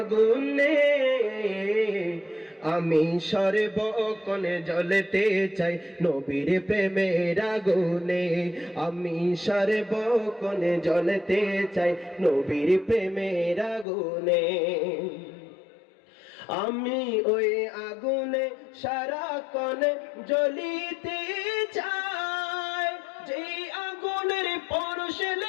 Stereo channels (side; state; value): right; drops out; at 13.9 s